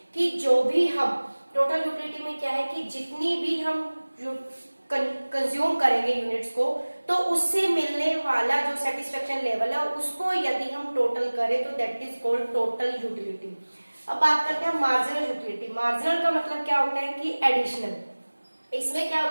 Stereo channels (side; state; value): both; inverted; correlation -1.00